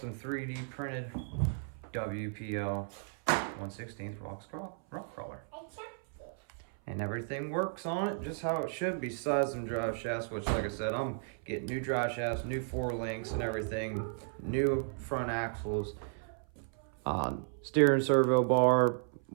3D printed WPL 1/16 rock crawler. And everything works on it just how it should be. Besides some drive shafts, which like I said, I'm getting new drive shafts, new 4 links and everything, new front axles, steering servo bar,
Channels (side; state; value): left; silent; 55 dB below the other